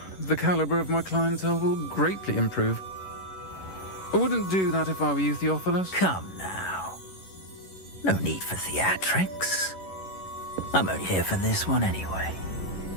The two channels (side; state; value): right; late; 11 ms